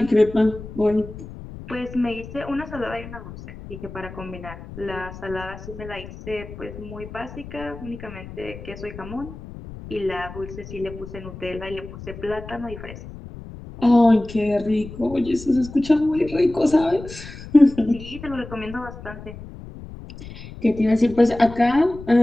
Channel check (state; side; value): noise; left; rumble, 13 dB below the sound